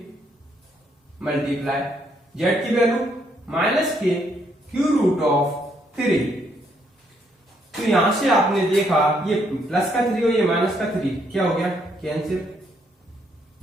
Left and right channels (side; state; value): both; normal; correlation 0.72